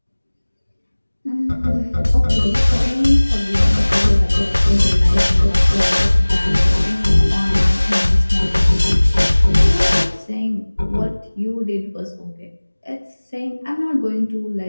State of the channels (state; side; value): inverted; both; correlation -1.00